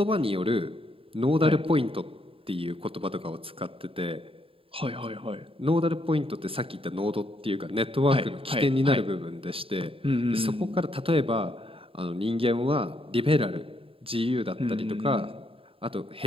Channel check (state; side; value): late; left; 0.27 ms